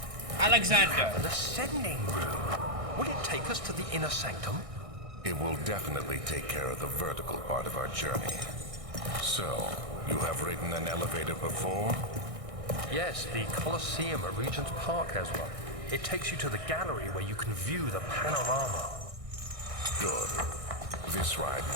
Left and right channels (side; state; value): left; late; 1.6 ms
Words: Alexander. An ascending room. Will it take us to the inner sanctum? It will definitely take care of the vertical part of our journey. So, you have ridden an elevator before? Yes, the Colosseum at Regent's Park has one. It takes you to the gallery where you can view the panorama. Good. This ride